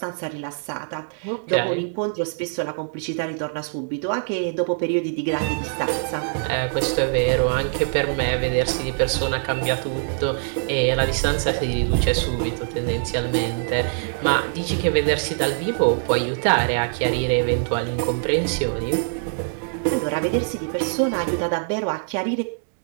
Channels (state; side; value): silent; left; digital silence